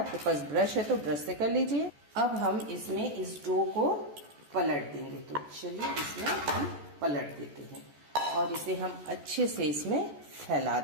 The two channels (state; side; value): late; left; 14 ms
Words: आपके पास ब्रश है तो ब्रश से कर लीजिए। अब हम इसमें इस डो को पलट देंगे। तो चलिए इसमें हम पलट देते हैं और इसे हम अच्छे से इसमें फैला